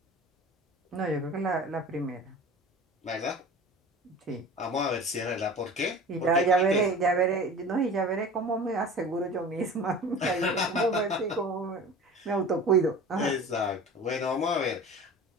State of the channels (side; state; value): both; normal; correlation 0.38